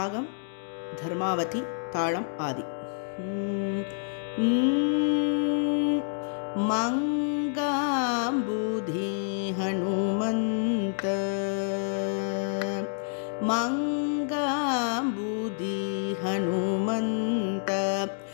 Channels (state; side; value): silent; right; digital silence